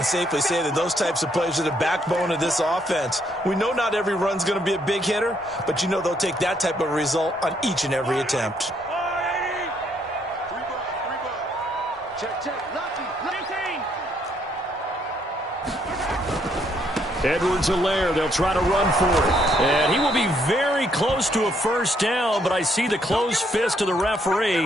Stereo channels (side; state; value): both; normal; correlation 0.71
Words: safely say that those types of plays are the backbone of this offense. We know not every run's going to be a big hitter, but you know they'll take that type of result on each and every attempt. Edwards-Helaire, they'll try to run for it. And he will be very close to a first down, but I see the closed fist of the